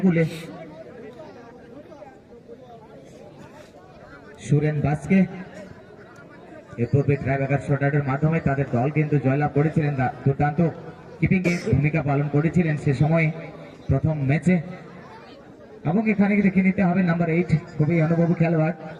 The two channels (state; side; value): identical; both; correlation 1.00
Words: সুরেন বাসকে এ পূর্বে ট্রাইব্রেকার শটআউটের মাধ্যমে তাদের দল কিন্তু জয়লাভ করেছিলেন দুর্দান্ত কিপিং এ ভূমিকা পালন করেছিলেন সে সময় প্রথম ম্যাচে এবং এখানে দেখে নিতে হবে নাম্বার 8 খুবই অনুভবী খেলোয়াড়